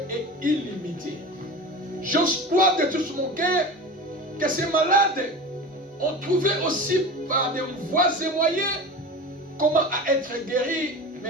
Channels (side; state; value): both; normal; correlation 0.31